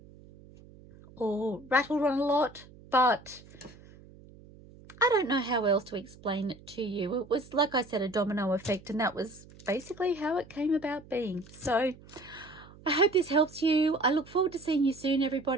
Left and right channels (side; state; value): right; noise; hum, 22 dB below the sound